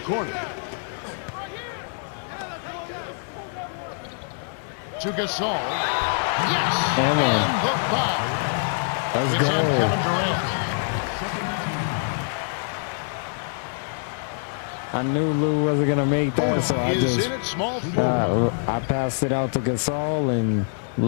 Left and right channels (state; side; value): silent; right; digital silence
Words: corner. To Gasol. Yes! Come on. And the foul. Let's It's on Kevin go. Durant. I knew Lou wasn't going to make that, so I Is just in at small forward. I passed it out to Gasol, and